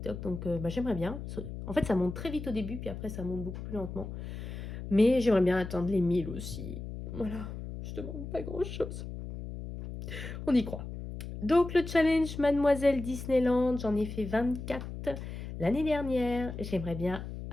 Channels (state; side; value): noise; left; hum, 8 dB below the sound